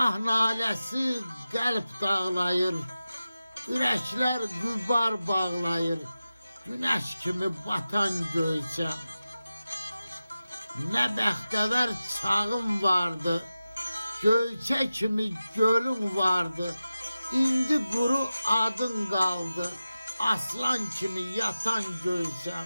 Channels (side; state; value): both; inverted; correlation -0.94